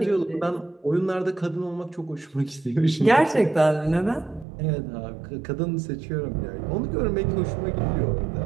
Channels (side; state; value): left; drops out; at 4.5 s